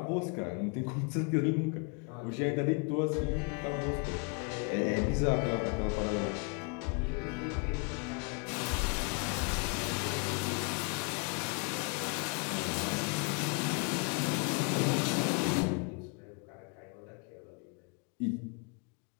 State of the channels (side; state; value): right; quieter; 33.2 dB